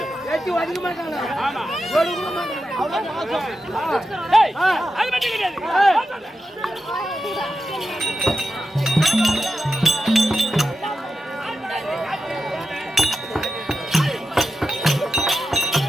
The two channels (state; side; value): normal; both; correlation 0.90